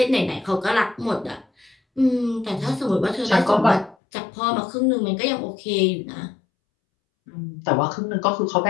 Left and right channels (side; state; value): right; drops out; at 4.0 s